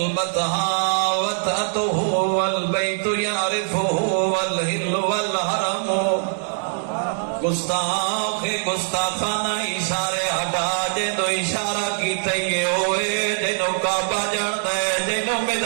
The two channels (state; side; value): silent; left; digital silence